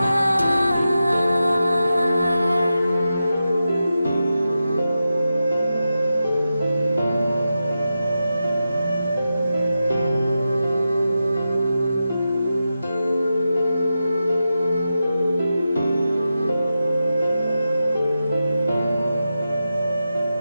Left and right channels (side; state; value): both; inverted; correlation -0.90